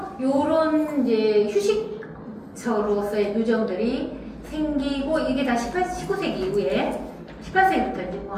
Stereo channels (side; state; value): both; identical; correlation 1.00